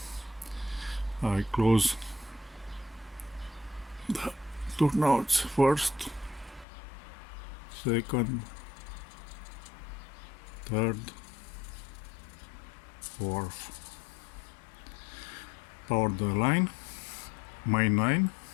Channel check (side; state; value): right; drops out; at 6.7 s